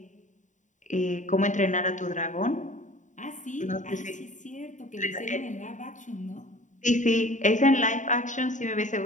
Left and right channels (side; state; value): right; late; 0.36 ms